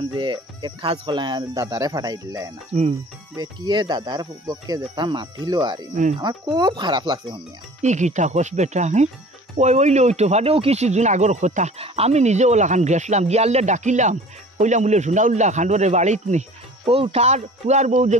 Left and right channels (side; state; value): both; normal; correlation 0.44